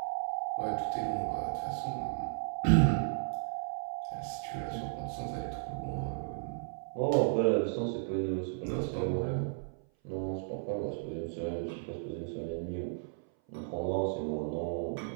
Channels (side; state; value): left; silent; 55 dB below the other